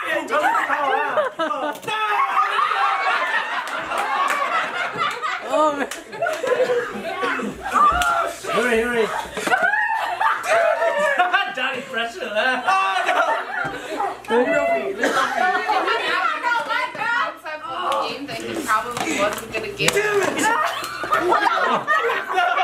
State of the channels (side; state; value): both; identical; correlation 1.00